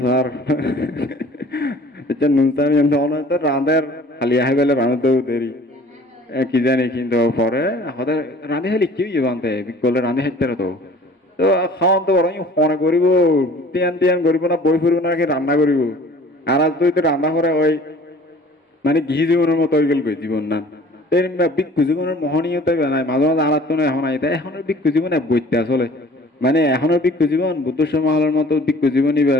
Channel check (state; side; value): normal; both; correlation 0.49